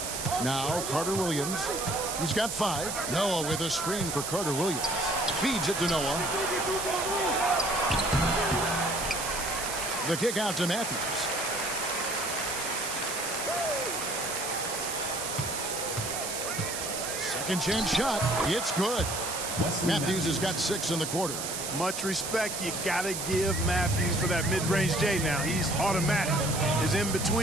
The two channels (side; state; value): right; noise; hiss, 4 dB below the sound